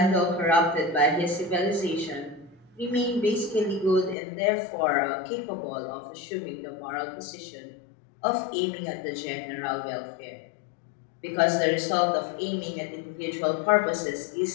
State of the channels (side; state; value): right; drops out; at 4.2 s